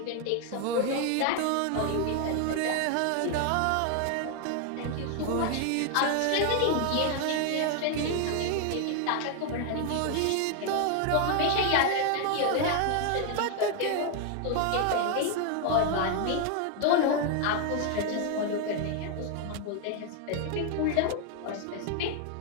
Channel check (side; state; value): both; different; correlation 0.01